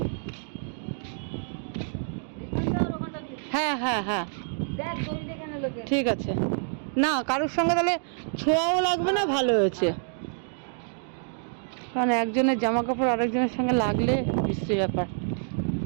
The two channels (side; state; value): left; silent; digital silence